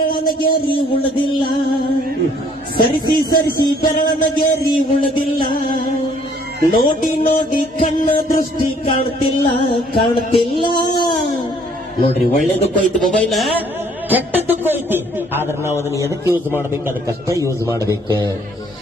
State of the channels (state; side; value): normal; both; correlation 0.61